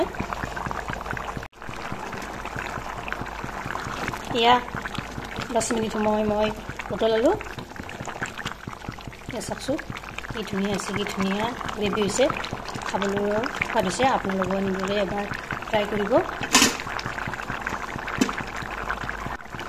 এয়া 10 মিনিট সময় মই উতলালোঁ এয়া চাওকচোন কি ধুনীয়া হৈছে কি ধুনীয়া গ্ৰেভি হৈছে খাবলৈ সোৱাদ হৈছে আপোনালোকে এনেদৰে এবাৰ ট্ৰাই কৰিব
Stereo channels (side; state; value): both; identical; correlation 1.00